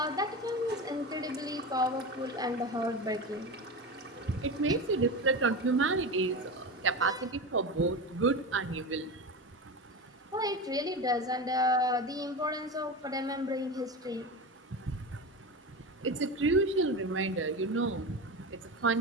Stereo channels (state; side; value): normal; both; correlation 0.24